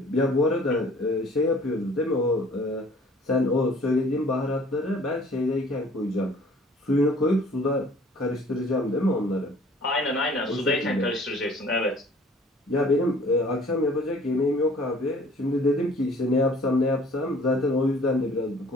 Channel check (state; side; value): normal; both; correlation 0.53